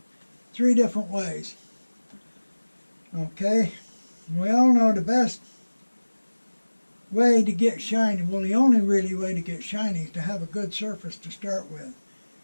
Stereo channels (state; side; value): inverted; both; correlation -1.00